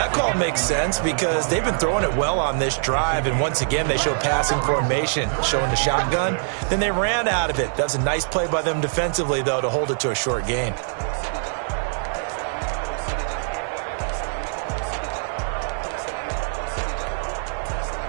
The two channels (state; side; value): silent; left; digital silence